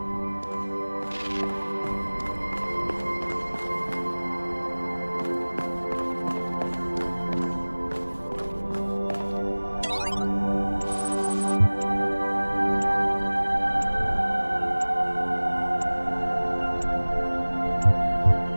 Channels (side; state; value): both; inverted; correlation -1.00